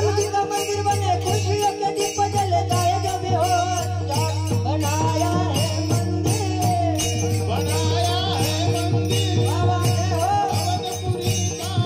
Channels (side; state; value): both; identical; correlation 1.00